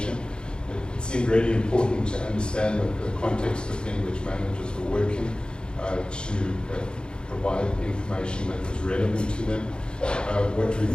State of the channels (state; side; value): late; right; 0.051 ms